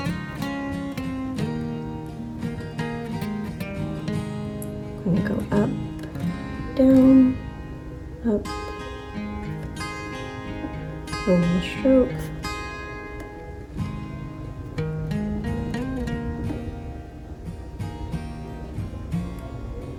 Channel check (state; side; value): identical; both; correlation 1.00